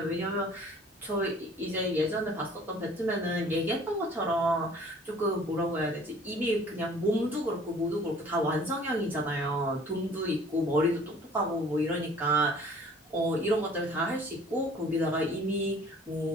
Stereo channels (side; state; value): both; normal; correlation 0.52